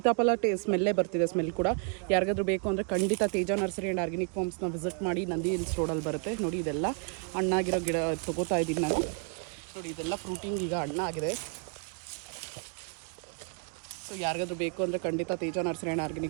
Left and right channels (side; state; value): left; quieter; 38.3 dB